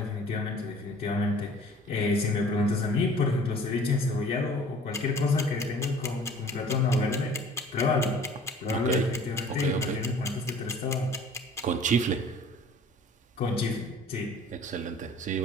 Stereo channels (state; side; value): normal; both; correlation 0.49